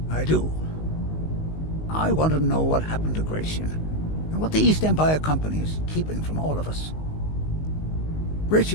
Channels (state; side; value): late; right; 19 ms